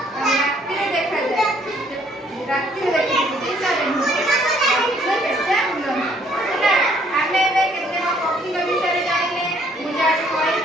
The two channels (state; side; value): normal; both; correlation 0.64